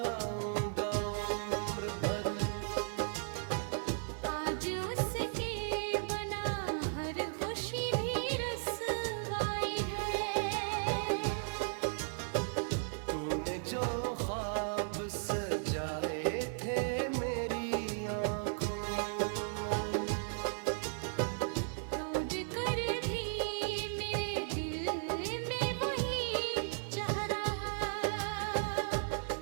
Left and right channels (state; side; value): silent; left; 54 dB below the other